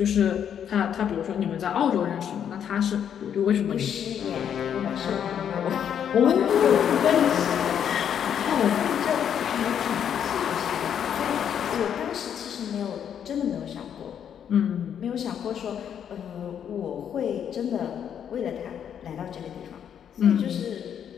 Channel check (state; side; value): quieter; right; 8.7 dB